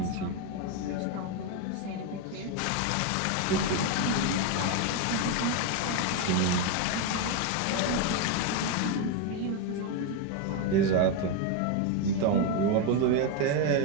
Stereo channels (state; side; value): different; both; correlation 0.02